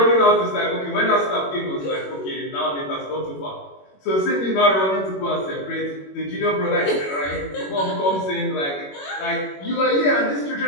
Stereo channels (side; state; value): right; late; 21 ms